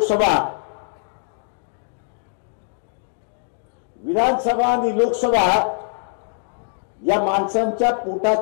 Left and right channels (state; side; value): silent; right; digital silence